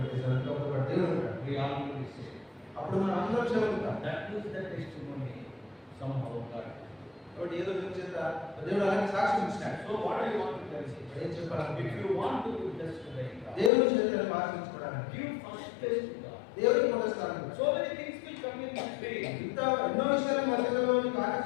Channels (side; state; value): right; drops out; at 13.7 s